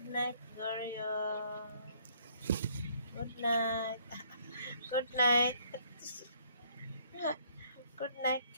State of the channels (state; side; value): inverted; both; correlation -0.64